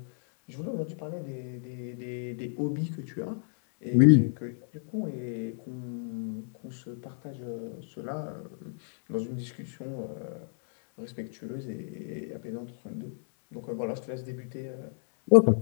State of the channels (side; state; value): right; silent; 57 dB below the other